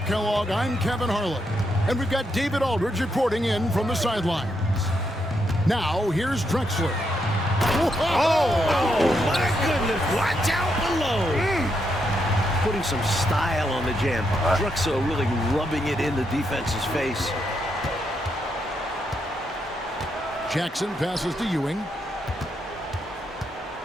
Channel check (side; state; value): both; normal; correlation 0.80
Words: Kellogg, I'm Kevin Harlan. And we've got David Aldridge reporting in from the sidelines. Now, here's Drexler. Oh, my goodness. Watch out below. Putting some style on the jam. Drexler really rubbing it in the defense's face. Jackson passes to Ewing.